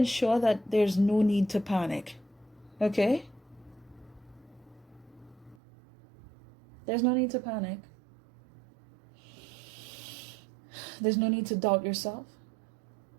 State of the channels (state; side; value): drops out; left; at 5.6 s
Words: that there's no need to panic. Okay? There's no need to panic. There's no need to doubt yourself.